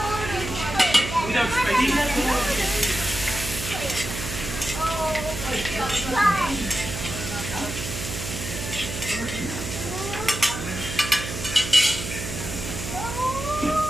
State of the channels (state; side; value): noise; right; hum, 7 dB below the sound